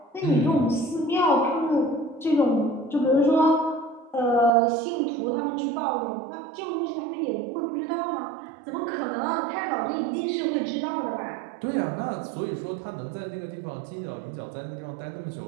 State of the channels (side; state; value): left; drops out; at 4.5 s